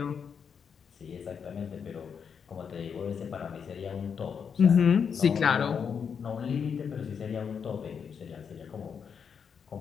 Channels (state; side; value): quieter; right; 6.7 dB